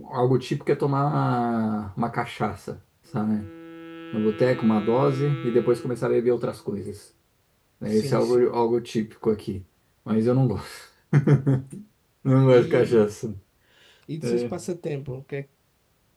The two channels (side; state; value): both; identical; correlation 1.00